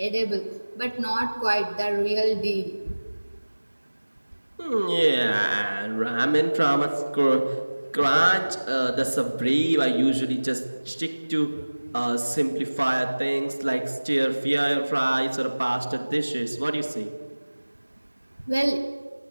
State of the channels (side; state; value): both; inverted; correlation -1.00